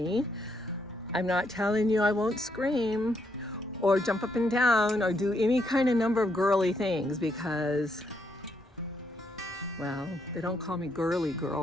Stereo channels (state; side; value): normal; both; correlation 0.76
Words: I'm not telling you I won't scream or jump up and down or do any kind of number of girly things because, well, they don't call me girly